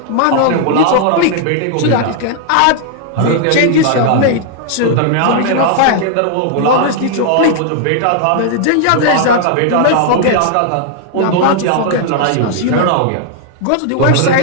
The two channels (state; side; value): different; both; correlation 0.00